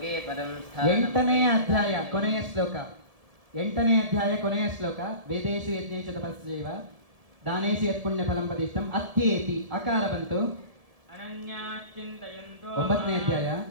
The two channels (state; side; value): late; left; 1.7 ms